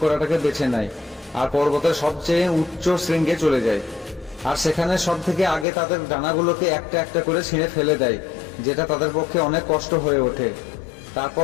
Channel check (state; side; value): drops out; right; at 5.7 s